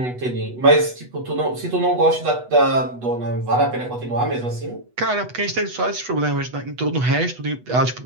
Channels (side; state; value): left; late; 8.1 ms